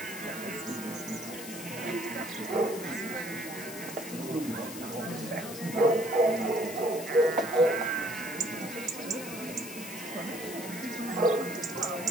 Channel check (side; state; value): left; noise; hiss, 11 dB below the sound